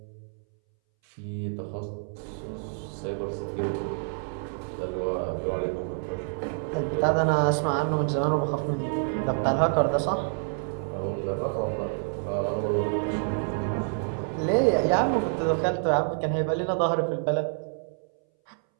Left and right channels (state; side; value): silent; left; 60 dB below the other